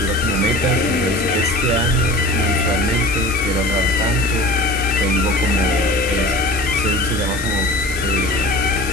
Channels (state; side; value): noise; left; hiss, 11 dB below the sound